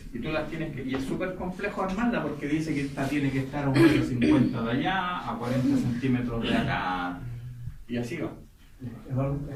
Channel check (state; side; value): identical; both; correlation 1.00